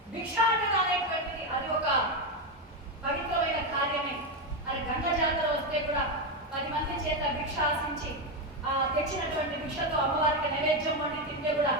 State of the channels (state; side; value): normal; both; correlation 0.09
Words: భిక్షాటన అనేటువంటిది అది ఒక పవిత్రమైన కార్యమే. అది గంగ జాతర వస్తే కూడా 10 మంది చేత భిక్ష ఆశించి ఆ తెచ్చినటువంటి భిక్షతో అమ్మవారికి నైవేద్యం వండి తింటే కూడా